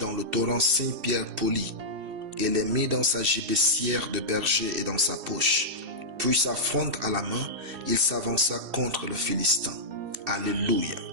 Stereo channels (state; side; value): late; left; 3.1 ms